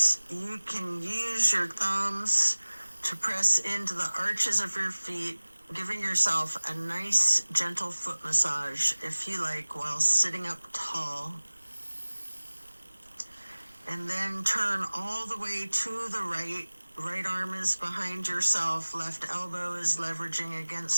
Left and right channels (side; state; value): both; inverted; correlation -1.00